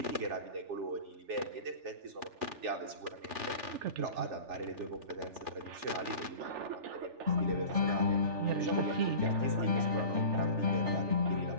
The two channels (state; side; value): late; left; 3.4 ms